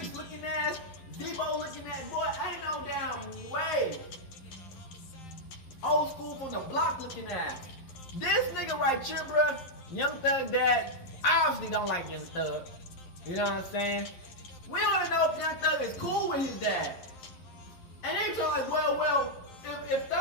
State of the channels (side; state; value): right; late; 11 ms